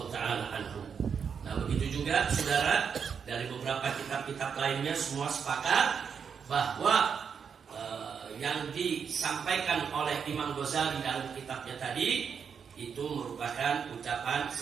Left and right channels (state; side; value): quieter; left; 6.7 dB